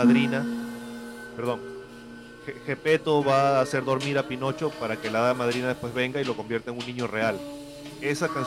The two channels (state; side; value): identical; both; correlation 1.00